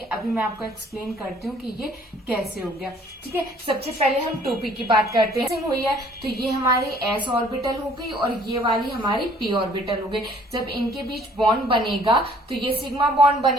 अभी मैं आपको एक्सप्लेन करती हूँ कि ये कैसे हो गया। ठीक है, सबसे पहले हम 2p की बात करते हैं। हुई है तो ये हमारी s ऑर्बिटल हो गई और ये वाली हमारी p ऑर्बिटल हो गई। जब इनके बीच बॉन्ड बनेगा तो ये सिग्मा बॉन्ड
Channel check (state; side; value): normal; both; correlation 0.58